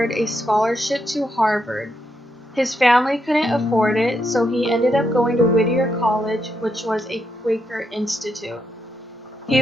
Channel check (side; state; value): both; normal; correlation 0.80